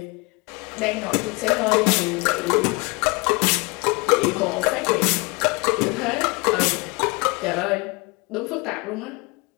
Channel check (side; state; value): right; quieter; 27.5 dB